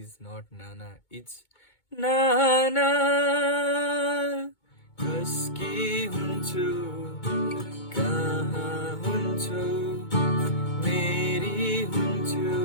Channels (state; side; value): late; right; 2.2 ms